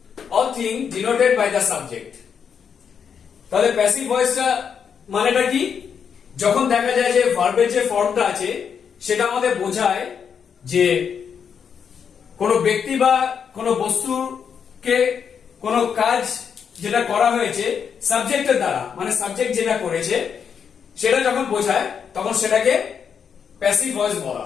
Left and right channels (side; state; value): right; quieter; 7.1 dB